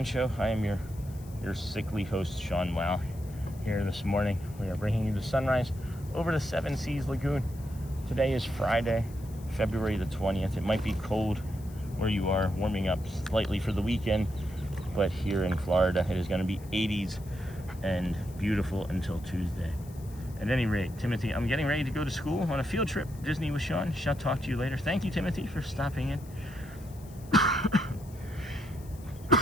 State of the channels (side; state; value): left; noise; hiss, 23 dB below the sound